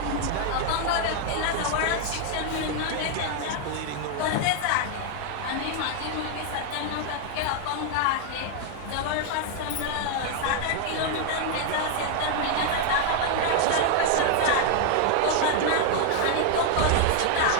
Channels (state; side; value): different; both; correlation 0.00